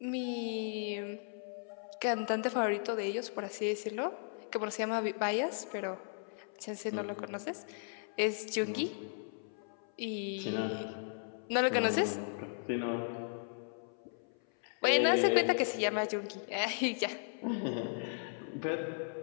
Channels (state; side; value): silent; right; 54 dB below the other